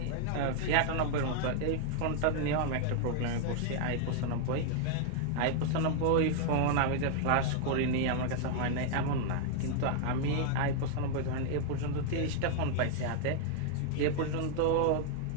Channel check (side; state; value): both; different; correlation 0.00